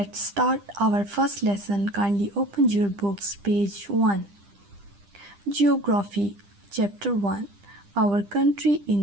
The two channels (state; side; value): late; left; 10 ms